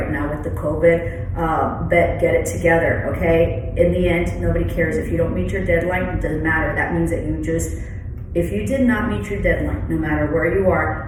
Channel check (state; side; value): identical; both; correlation 1.00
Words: now with the COVID. But get it together, okay? In the end, nobody cares. If you don't meet your deadline, it doesn't matter. That means that if you did not meet your deadline, no matter where you are,